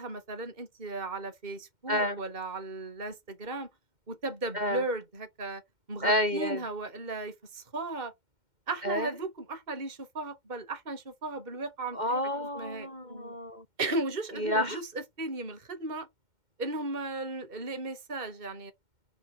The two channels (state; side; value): late; left; 2.1 ms